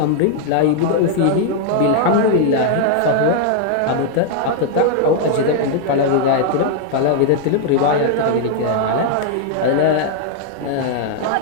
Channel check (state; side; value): different; both; correlation 0.00